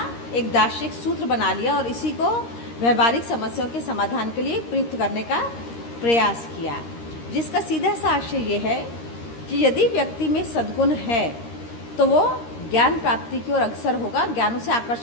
एक दार्शनिक सूत्र बना लिया और इसी को व्यवहारिक समस्याओं के समाधान के लिए प्रयुक्त करने का प्रयास किया, जिसका सीधा सा आशय ये है कि यदि व्यक्ति में सद्गुण है तो वो ज्ञान प्राप्ति की ओर अग्रसर होगा, ज्ञान उसे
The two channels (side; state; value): right; late; 13 ms